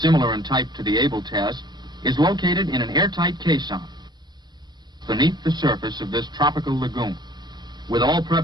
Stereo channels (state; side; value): late; left; 0.21 ms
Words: similar in type to the Able test, is located in an airtight caisson beneath the surface of this tropical lagoon. With all